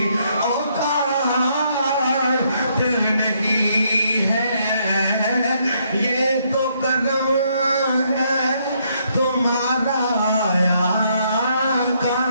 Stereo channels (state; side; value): inverted; both; correlation -0.72